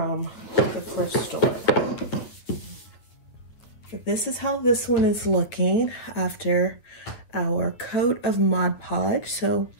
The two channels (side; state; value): right; late; 9.5 ms